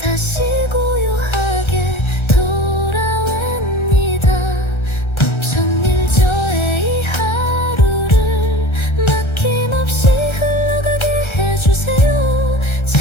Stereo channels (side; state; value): right; late; 1.3 ms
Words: 고요하게 돌아옵니다. 벅찬일 저의 이 하루를 막힘없이 흘러가게 해주세요.